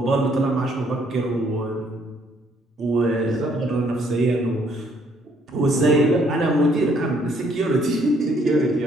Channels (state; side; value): normal; both; correlation 0.67